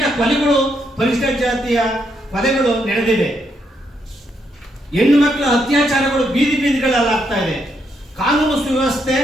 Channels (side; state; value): both; normal; correlation 0.77